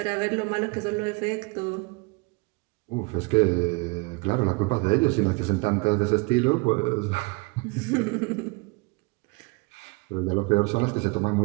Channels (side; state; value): left; quieter; 28.2 dB